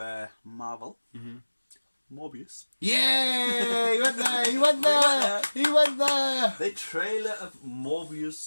Marvel. Morbius. Yeah! He went there! The trailer of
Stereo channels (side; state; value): both; inverted; correlation -1.00